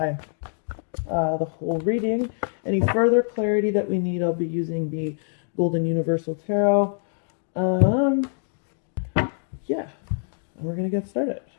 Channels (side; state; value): right; silent; digital silence